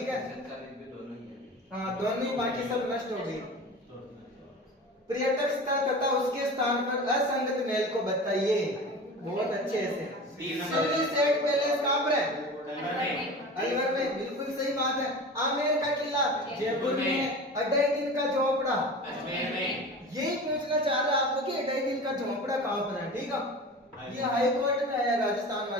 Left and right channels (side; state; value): both; normal; correlation 0.34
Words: है। हाँ, दोनों, बाकी सब नष्ट हो गई। पर्यटक स्थल तथा उसके स्थान पर असंगत महल को बताइए, बहुत अच्छे से। सेट पैलेस कहाँ पर है? अलवर में, बिल्कुल सही बात है। आमेर का किला जयपुर में। 2.5 दिन का झोपड़ा अजमेर में। यही पूछना चाह रहा आपको कि 2.5 दिन का झोपड़ा कहाँ पर है, ठीक है। ये हाई कोर्ट में आया, राजस्थान